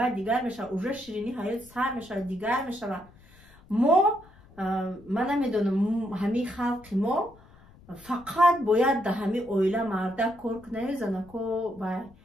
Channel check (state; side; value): noise; left; rumble, 25 dB below the sound